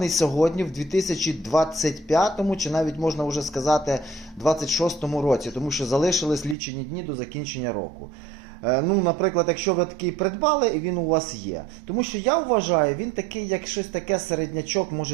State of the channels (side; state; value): left; drops out; at 6.6 s